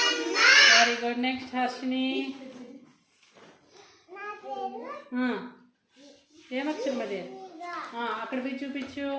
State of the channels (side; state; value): both; identical; correlation 1.00